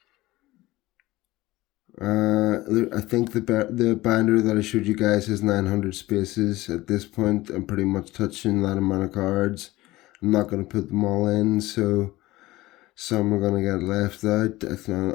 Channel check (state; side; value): quieter; right; 18.5 dB